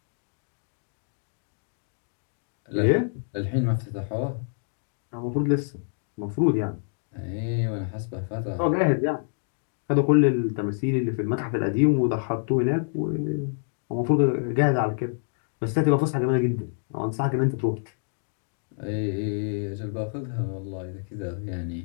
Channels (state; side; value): silent; right; digital silence